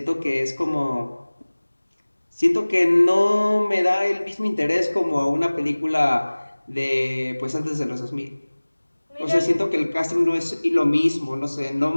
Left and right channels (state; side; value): inverted; both; correlation -1.00